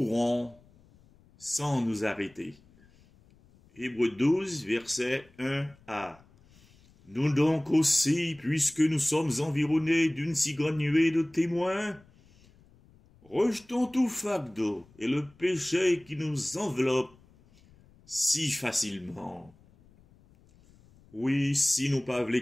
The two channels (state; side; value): noise; left; rumble, 29 dB below the sound